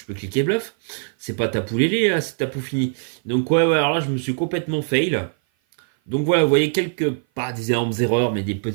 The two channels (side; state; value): left; silent; 56 dB below the other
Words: cliquer bluff. C'est pas Tapoulélé, là, c'est Tapou fini. Donc, ouais, alors là, je me suis complètement fail. Donc, voilà, vous voyez pas des énormes erreurs, mais des